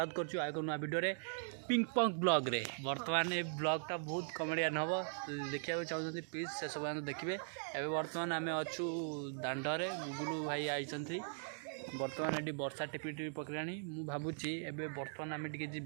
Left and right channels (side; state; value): left; silent; digital silence